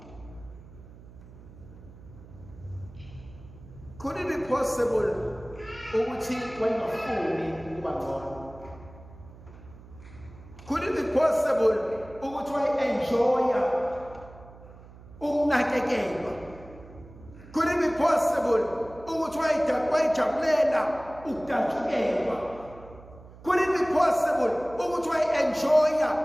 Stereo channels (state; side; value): noise; right; hum, 19 dB below the sound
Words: Could it be possible ukuthi wayengafuni ukuba ngcono? Could it be possible ukuthi wayenjoya ukunakekelwa? Could it be possible ukuthi wayejabulela ukudatshukelwa? Could it be possible ukuthi wayenjoya